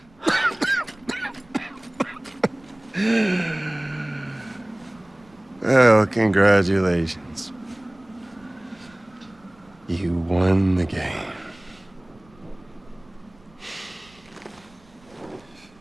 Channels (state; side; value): noise; right; rumble, 28 dB below the sound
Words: Well, congratulations. You won the game.